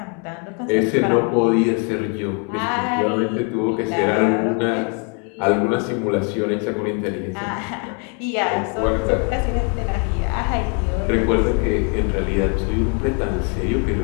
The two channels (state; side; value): quieter; right; 37.2 dB